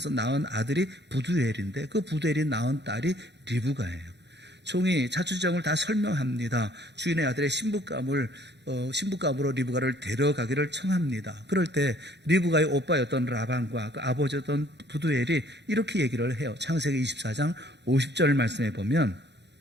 낳은 아들이 부두엘인데 그 부두엘이 낳은 딸이 리브가예요. 종이 자초지종을 다 설명합니다. 주인의 아들의 신부감으로 리브가를 데려가기를 청합니다. 그럴 때 리브가의 오빠였던 라반과 그 아버지였던 부두엘이 이렇게 얘기를 해요. 창세기 24장 50절 말씀에 보면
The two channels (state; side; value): late; left; 0.50 ms